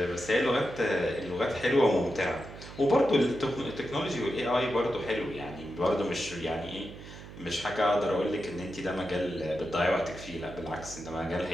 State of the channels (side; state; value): right; noise; hum, 14 dB below the sound